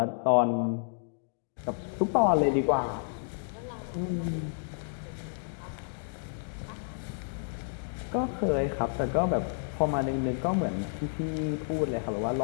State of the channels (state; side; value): silent; right; digital silence